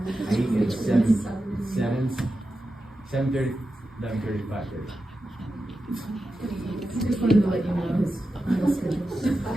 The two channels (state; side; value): normal; both; correlation 0.91